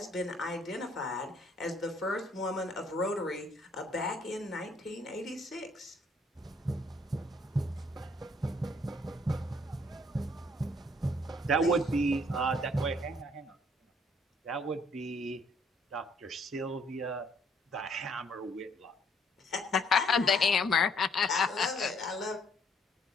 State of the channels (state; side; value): normal; both; correlation 0.65